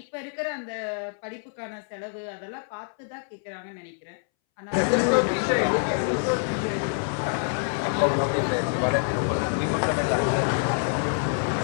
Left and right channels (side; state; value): right; silent; 61 dB below the other